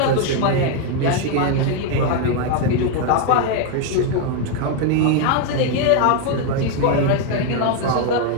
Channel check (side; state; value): both; different; correlation 0.01